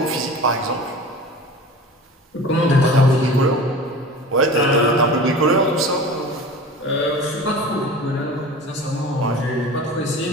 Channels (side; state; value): both; normal; correlation 0.37